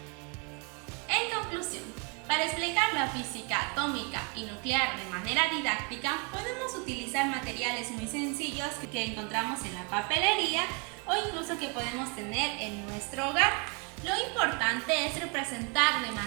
En conclusión, para explicar la física atómica y nuclear de manera didáctica, podemos utilizar materiales muy sencillos que encontramos en la papelería o incluso que podemos tener en nuestro hogar. Lo importante es representar de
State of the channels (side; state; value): left; quieter; 34.4 dB